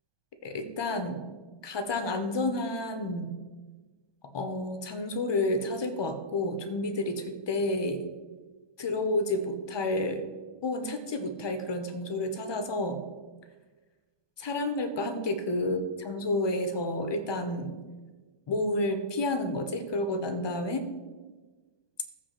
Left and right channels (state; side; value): late; right; 1.2 ms